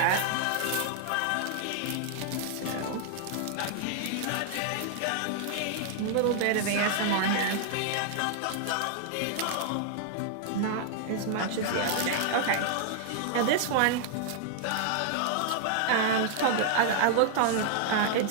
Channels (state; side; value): different; both; correlation -0.01